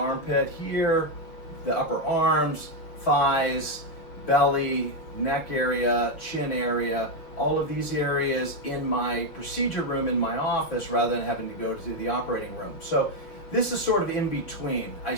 here, the upper arms, thighs, belly, neck area, chin area, all of these areas in my procedure room in my office rather than having to go to the operating room. So this is sort of in between. I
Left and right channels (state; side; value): late; right; 6.3 ms